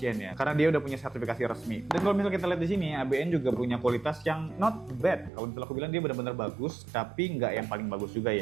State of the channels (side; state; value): left; drops out; at 5.3 s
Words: ya, karena dia udah punya sertifikasi resmi. Dan kalau misalnya kita lihat di sini, ABN juga punya kualitas yang not bad. Kalau misalnya aku bilang dia benar-benar bagus, tapi nggak yang paling bagus juga